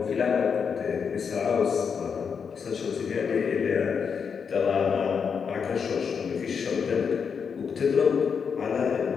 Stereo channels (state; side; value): quieter; right; 6.4 dB